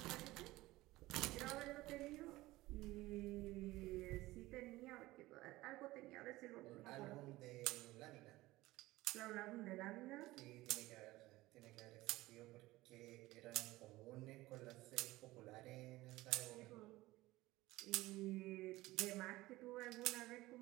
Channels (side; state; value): left; quieter; 18.5 dB